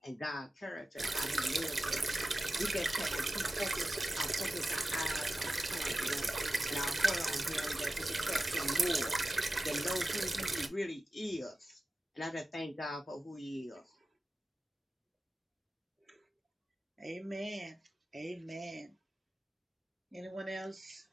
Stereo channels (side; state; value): both; normal; correlation 0.94